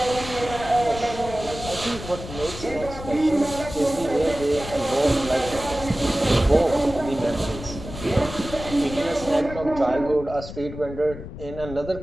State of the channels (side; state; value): left; noise; rumble, 11 dB below the sound